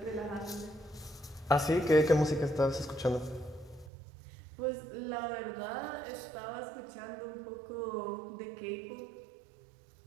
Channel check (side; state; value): left; drops out; at 3.9 s